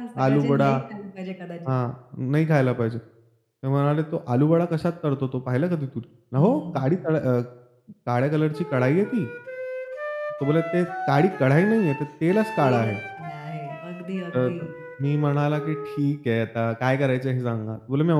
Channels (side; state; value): both; identical; correlation 1.00